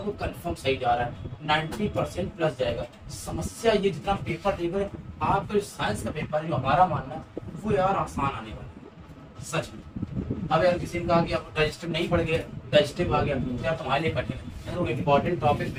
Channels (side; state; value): both; identical; correlation 1.00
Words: कंफर्म सही जा रहा है, 90% प्लस जाएगा। समस्या ये जितना पेपर देख रहे आपका साइंस का पेपर जो हमारा मानना है वो यार आसान आने वाला है, सच में। अब यार किसी ने कहा कि आप डाइजेस्टिव नहीं पढ़ गए, डाइजेस्टिव आ गया तो यार तुम्हारे लिए कठिन है। तो इम्पोर्टेंट टॉपिक